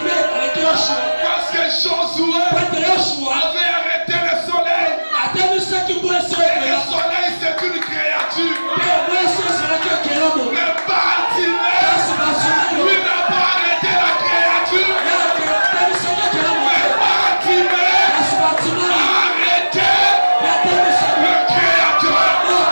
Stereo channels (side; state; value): both; inverted; correlation -1.00